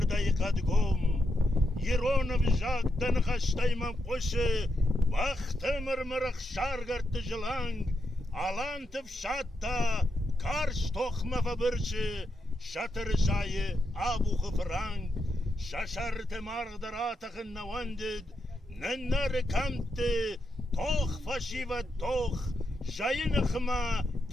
قد قوم يرون بجاق دنخشتي ممقوش وقت مرمرخ شارغر تجلانگ آلان تفشاتا کارش تخمه فبرش شتر جای آبو خفرانگ ششرت مارغدراتخ نواندد ننر کمت توخ فشی و توخ جای نخما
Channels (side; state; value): both; normal; correlation 0.83